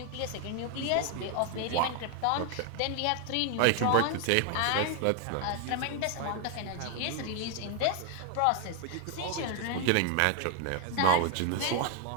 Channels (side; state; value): both; different; correlation 0.01